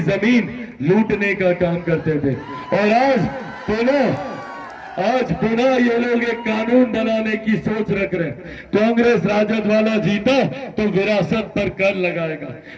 जमीन लूटने का काम करते थे। और आज पुनः ये लोग एक कानून बनाने की सोच रख रहे हैं। कांग्रेस राजद वाला जीता तो विरासत पर कर लगाएगा।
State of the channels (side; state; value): both; identical; correlation 1.00